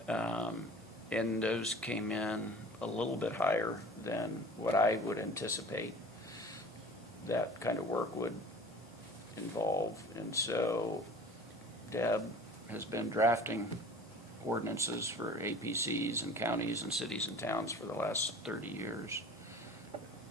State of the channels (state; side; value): normal; both; correlation 0.43